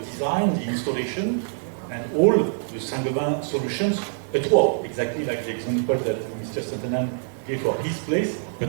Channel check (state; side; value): silent; left; 59 dB below the other